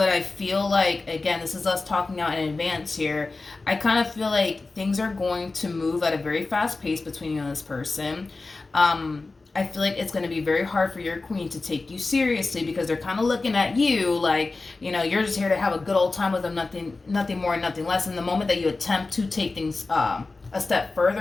I feel like, again, this is us talking out in advance here. I kind of feel like things are going to move at a very fast pace between you and this person. I feel like it's going to be very hard for your queen to take you seriously, because they're kind of looking at you like, you're just here to have a good old time with them, nothing more, nothing less. And the moment that you attempt to take things a step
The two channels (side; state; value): right; quieter; 3.6 dB